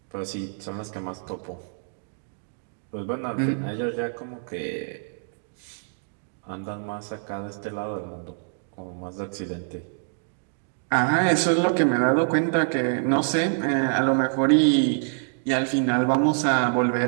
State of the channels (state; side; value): silent; left; digital silence